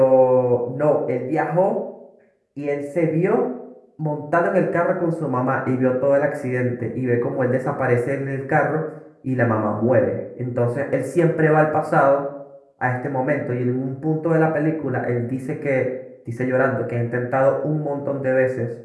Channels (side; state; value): both; identical; correlation 1.00